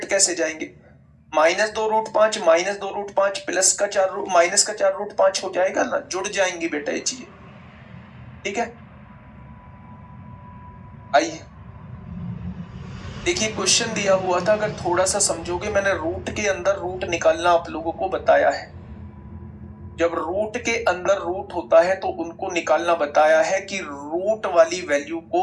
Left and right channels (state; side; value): identical; both; correlation 1.00